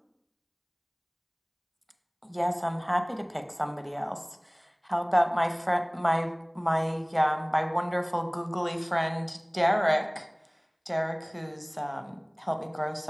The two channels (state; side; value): identical; both; correlation 1.00